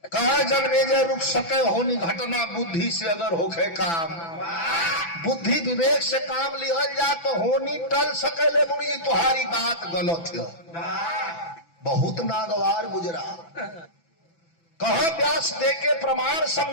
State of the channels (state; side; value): late; right; 6.0 ms